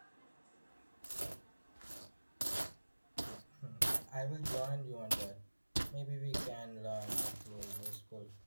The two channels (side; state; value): both; inverted; correlation -1.00